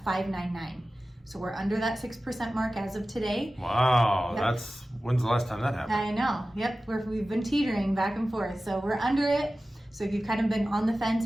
5.99. So we're under that 6% mark as of today. Wow, that's, when's the last time that happened? I know, yep, we've been teetering back and forth. So we're under it. So if you've kind of been on the fence,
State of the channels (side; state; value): both; normal; correlation 0.95